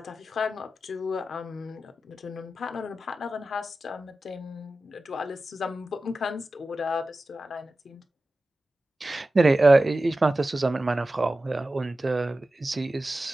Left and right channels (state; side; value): normal; both; correlation 0.94